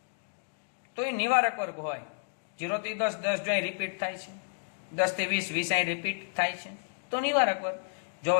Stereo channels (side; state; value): right; silent; digital silence